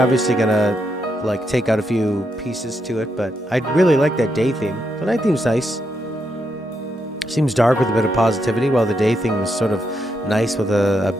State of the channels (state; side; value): normal; both; correlation 0.81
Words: gonna like take out a few pieces to it, but I really like that day theme. The night theme's nice. Seems dark with a bit of positivity, while the day theme is sort of nice with a